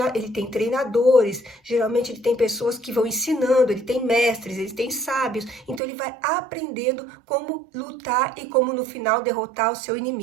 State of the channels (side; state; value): left; drops out; at 5.8 s